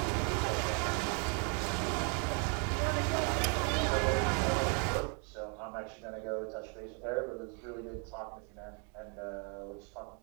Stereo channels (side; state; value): left; quieter; 38.2 dB